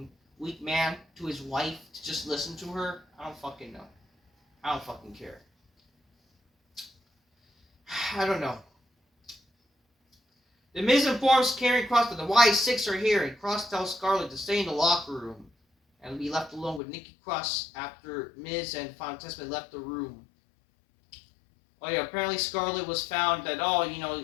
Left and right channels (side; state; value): right; drops out; at 16.8 s